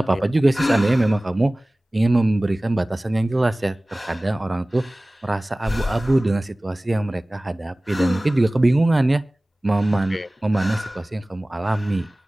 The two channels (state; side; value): normal; both; correlation 0.98